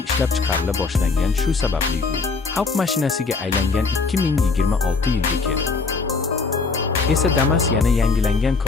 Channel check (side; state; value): right; quieter; 4.3 dB